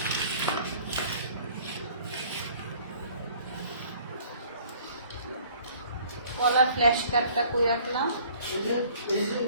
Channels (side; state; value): both; inverted; correlation -0.54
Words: কলার ফ্ল্যাশ কার্ডটা কই রাখলাম?